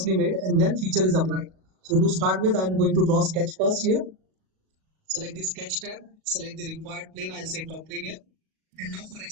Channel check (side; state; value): left; late; 37 ms